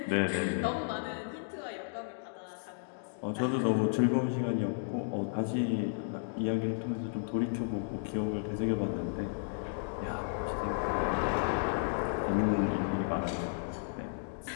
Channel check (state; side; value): silent; right; digital silence